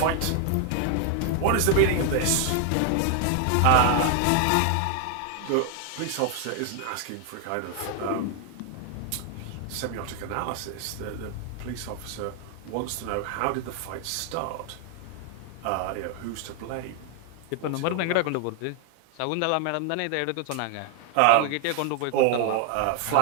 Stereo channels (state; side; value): different; both; correlation 0.00